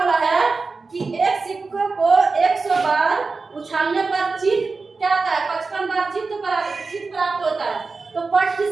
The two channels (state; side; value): quieter; left; 4.1 dB